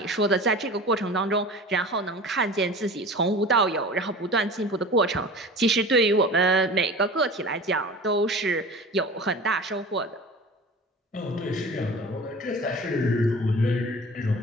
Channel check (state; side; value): normal; both; correlation 0.38